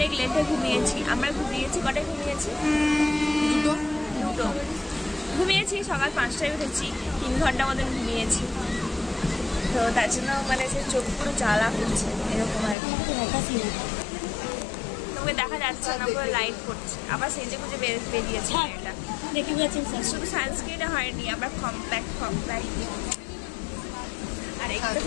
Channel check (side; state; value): right; drops out; at 12.8 s